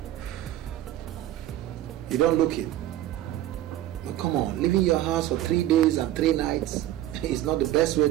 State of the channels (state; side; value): quieter; left; 13.6 dB